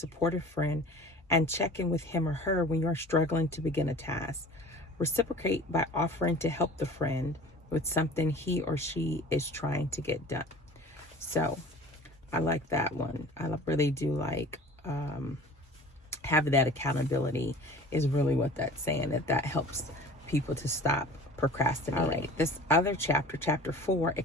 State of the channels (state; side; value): normal; both; correlation 0.43